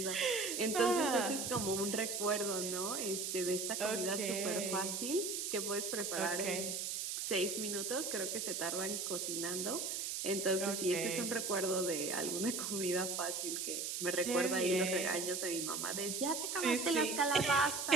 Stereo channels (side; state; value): right; noise; hiss, 2 dB below the sound